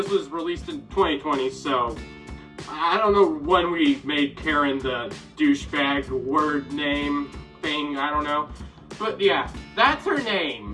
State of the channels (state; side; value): identical; both; correlation 1.00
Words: was released in 2020, so I don't know when we made Karen the douchebag word name thing, I don't know. But yeah, that's her name.